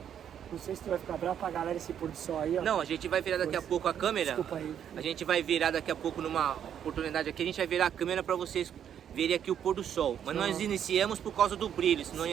Não sei se tu vai ficar bravo pra galera esse pôr do sol aí, ó. Não, a gente vai virar daqui a pouco a câmera. Desculpa aí. A gente vai virar daqui a pouco numa oportunidade aqui, a gente vai virar a câmera para vocês verem aqui o pôr do sol. Mas nós iniciamos por causa do brilho, senão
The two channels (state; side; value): quieter; left; 9.2 dB